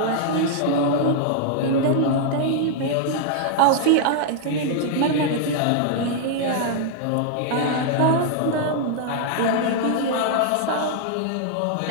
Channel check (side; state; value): both; different; correlation -0.01